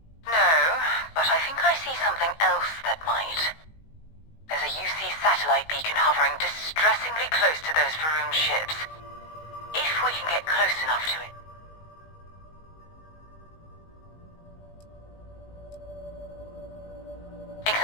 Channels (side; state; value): right; late; 19 ms